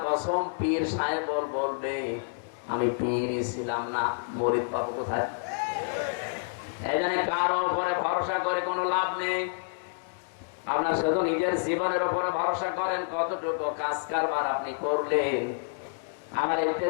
কসম পীর সাহেব বলবে আমি পীরই ছিলাম না, মরিদ পাবো কোথায়। এই জন্য কারো উপরে ভরসা করে কোনো লাভ নেই। আপনার শুধু নিজের জীবনের উপরে ভরসা করেন, কতটুকু কাজ কারবার আপনি করলেন। আমার এই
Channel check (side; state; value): right; silent; digital silence